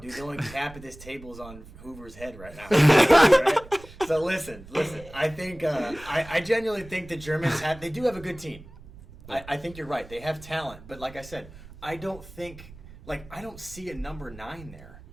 the only cap at this table is on Hoover's head right now. Right? So listen. I think I genuinely think the Germans they do have a good team. I think you're right. They have talent, but like I said, I don't see a number 9 there.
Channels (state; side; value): noise; right; rumble, 18 dB below the sound